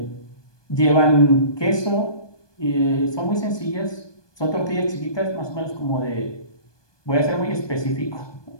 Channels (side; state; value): right; late; 1.2 ms